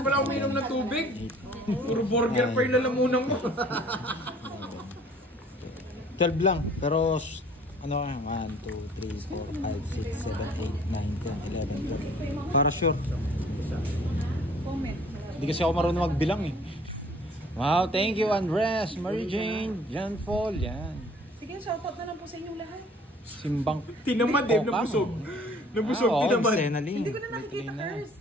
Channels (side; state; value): both; normal; correlation 0.54